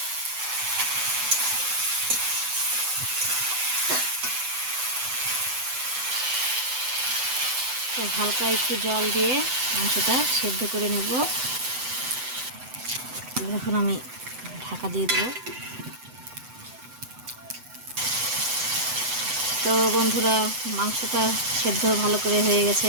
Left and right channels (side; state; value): left; late; 7.9 ms